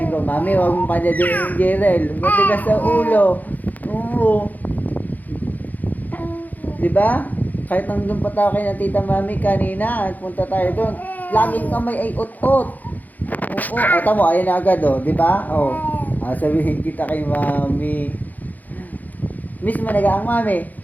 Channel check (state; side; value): late; right; 0.082 ms